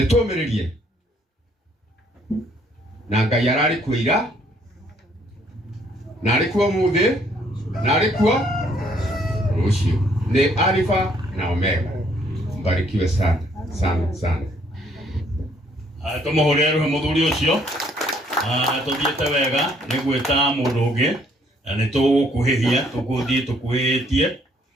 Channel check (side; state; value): both; normal; correlation 0.65